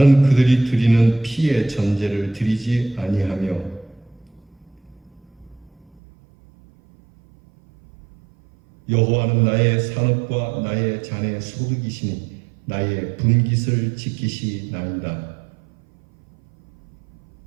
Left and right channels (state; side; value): drops out; left; at 6.0 s